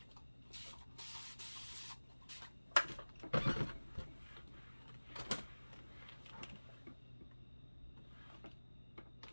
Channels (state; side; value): inverted; both; correlation -1.00